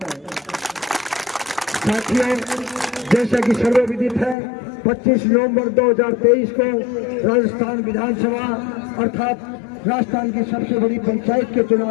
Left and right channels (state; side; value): drops out; right; at 4.4 s